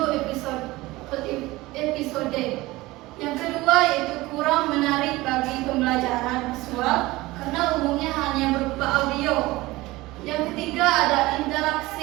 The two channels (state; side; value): quieter; left; 19.7 dB